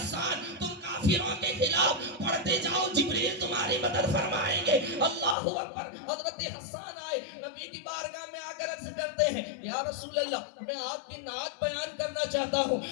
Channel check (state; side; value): drops out; right; at 5.4 s